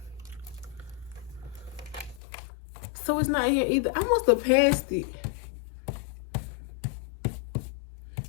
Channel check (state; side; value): drops out; right; at 2.2 s